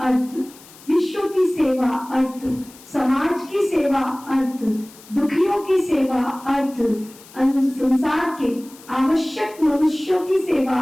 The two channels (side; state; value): left; noise; hiss, 22 dB below the sound